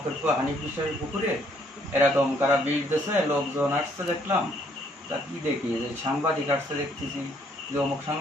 হানিফ বিশ্বাসের পুকুরে এরকম কারা বিষ দিয়েছে, লোকজন আসছে দেখলাম। তা কি দেখি যে সাংবাদিক আসছে দেখতেছি, যে অমুক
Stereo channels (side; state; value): both; normal; correlation 0.66